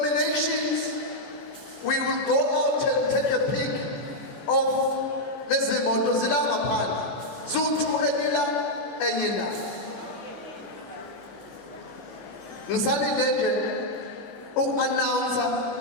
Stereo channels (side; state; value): right; late; 14 ms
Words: we will go out and take a pic of lezi moto zila ngaphandle. Zutu enyila enyina. Ngisalinde nje uku-announcer.